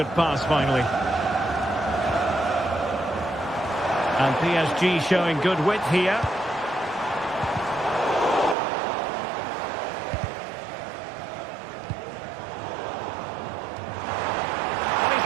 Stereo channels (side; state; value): left; drops out; at 8.6 s